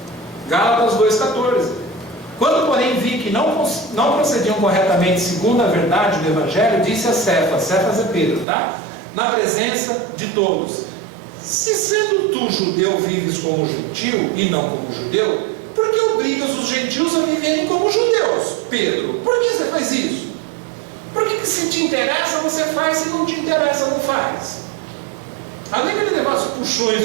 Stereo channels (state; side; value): drops out; left; at 8.5 s